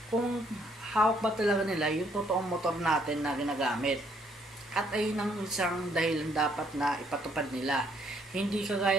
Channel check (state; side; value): normal; both; correlation 0.68